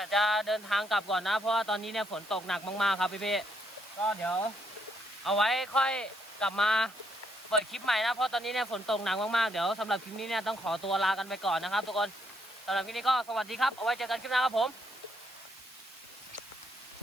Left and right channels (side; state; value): right; noise; hiss, 23 dB below the sound